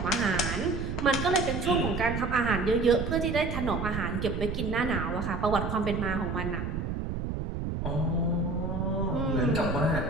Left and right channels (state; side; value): noise; right; rumble, 3 dB below the sound